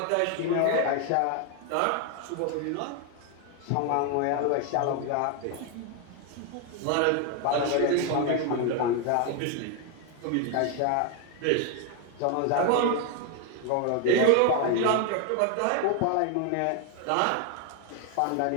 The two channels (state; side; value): different; both; correlation 0.01